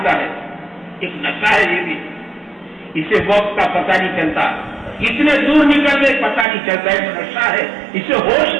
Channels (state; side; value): drops out; left; at 6.5 s